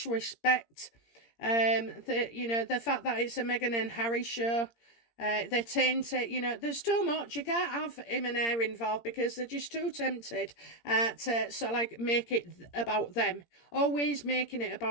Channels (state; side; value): late; right; 17 ms